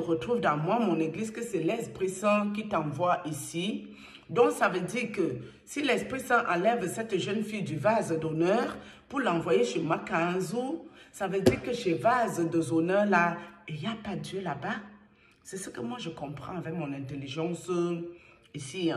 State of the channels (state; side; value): identical; both; correlation 1.00